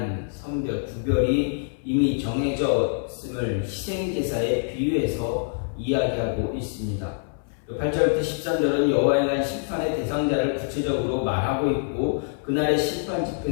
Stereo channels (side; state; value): right; silent; 61 dB below the other